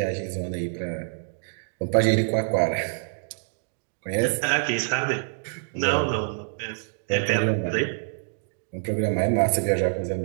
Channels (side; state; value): left; silent; digital silence